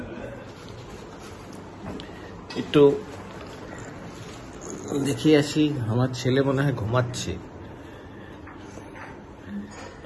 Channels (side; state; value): both; identical; correlation 1.00